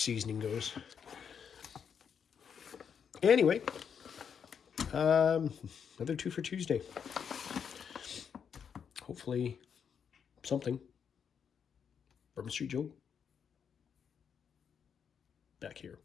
goes. Anyway, another Twofer Tuesday. Hopefully, something. Bourbon Street Joe. Back here.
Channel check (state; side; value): quieter; right; 7.3 dB